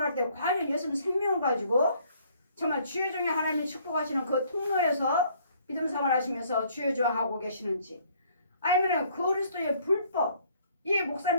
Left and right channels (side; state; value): both; inverted; correlation -0.62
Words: 때 과연 예수님 생명 가지고 정말 주여 중에 하나님이 축복하시는 그 통로에서 믿음 생활하시면서 주여 하고 계시는지, 아니면 그리스도의 불법, 이